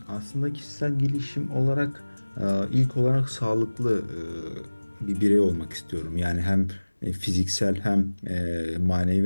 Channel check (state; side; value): inverted; both; correlation -1.00